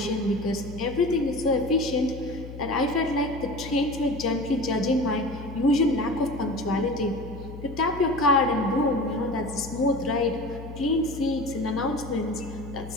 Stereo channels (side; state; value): left; noise; hum, 12 dB below the sound